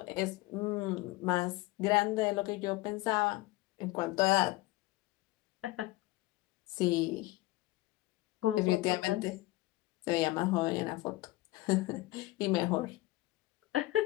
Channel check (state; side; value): quieter; right; 19.0 dB